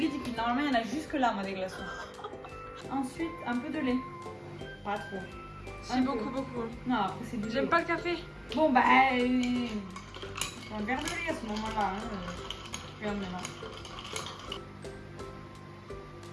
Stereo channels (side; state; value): both; identical; correlation 1.00